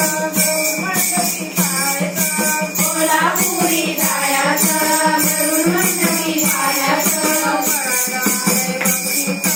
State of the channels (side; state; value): both; identical; correlation 1.00